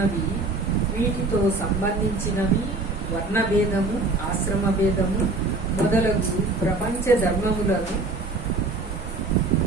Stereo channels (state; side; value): quieter; left; 3.3 dB